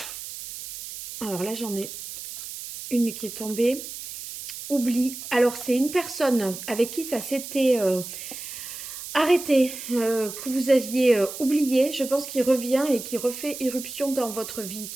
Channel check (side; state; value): right; noise; hiss, 10 dB below the sound